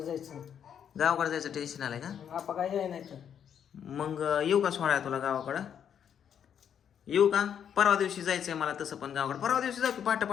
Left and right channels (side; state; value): right; quieter; 8.5 dB